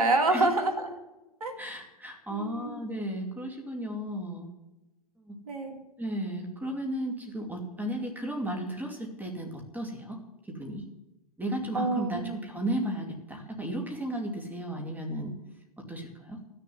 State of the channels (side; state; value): both; normal; correlation 0.36